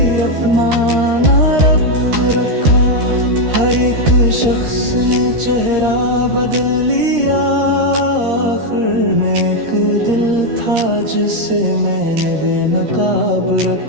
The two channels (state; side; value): late; left; 13 ms